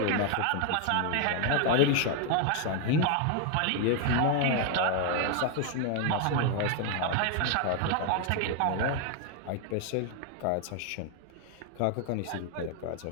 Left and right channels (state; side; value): different; both; correlation 0.01